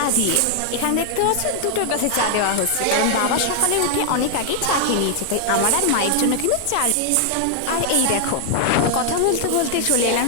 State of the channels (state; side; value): different; both; correlation 0.00